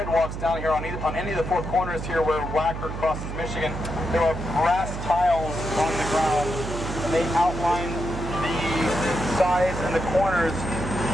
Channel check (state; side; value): noise; right; hum, 6 dB below the sound